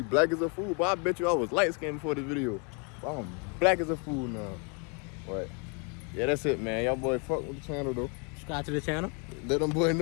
black as a fool, but I bet you I was light skinned before this video. But I'm black as a fool now. But yeah, that's it, man. Y'all boy fuck with the channel though. Subscribe to the channel. Let them boy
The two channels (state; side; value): quieter; right; 35.5 dB